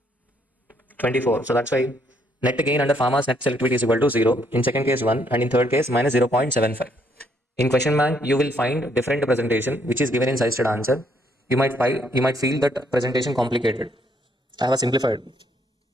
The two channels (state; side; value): normal; both; correlation 0.70